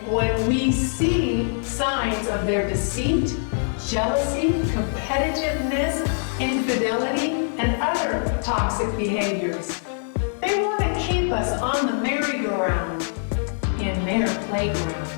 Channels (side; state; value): right; silent; digital silence